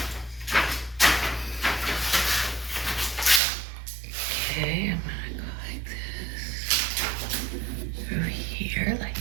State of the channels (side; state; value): left; drops out; at 3.4 s